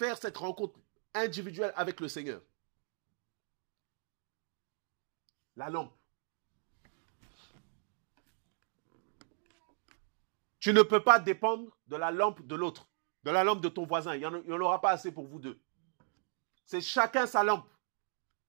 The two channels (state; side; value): silent; left; 54 dB below the other